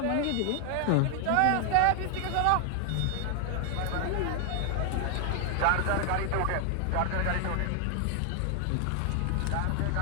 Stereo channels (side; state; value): both; different; correlation 0.00